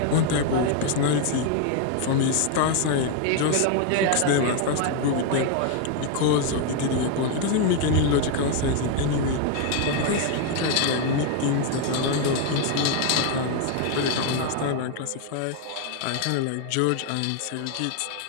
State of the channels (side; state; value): both; different; correlation 0.00